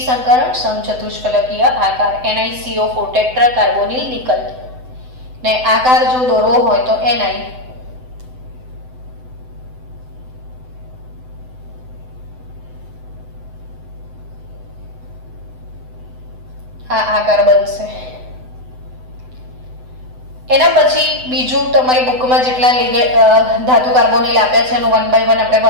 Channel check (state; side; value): late; left; 7.9 ms